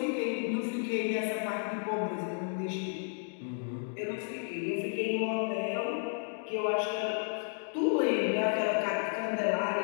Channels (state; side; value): silent; right; 56 dB below the other